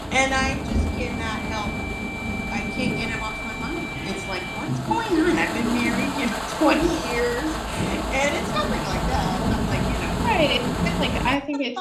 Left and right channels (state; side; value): identical; both; correlation 1.00